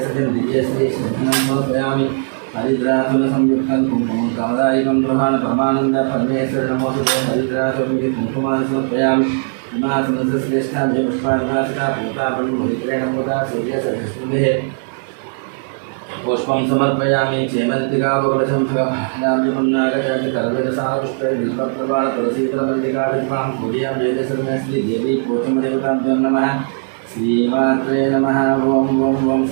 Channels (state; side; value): silent; left; digital silence